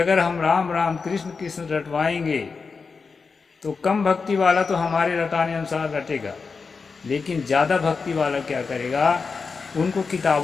हम राम राम कृष्ण कृष्ण रटवाएंगे तो कम भक्ति वाला तो हमारे रटाने अनुसार रटेगा, लेकिन ज़्यादा भक्ति वाला क्या करेगा, उनको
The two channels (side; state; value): right; quieter; 4.9 dB